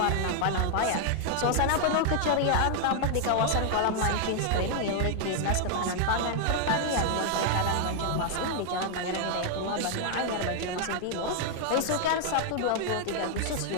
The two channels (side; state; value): both; different; correlation 0.00